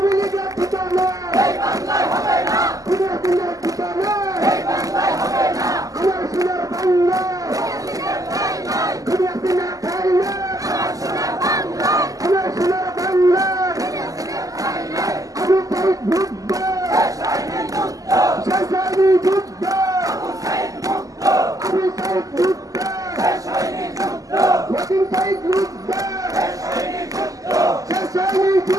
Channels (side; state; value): left; late; 0.17 ms